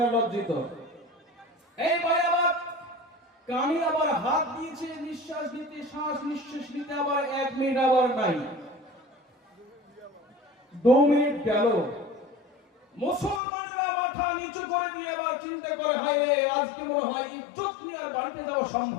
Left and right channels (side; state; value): right; drops out; at 13.4 s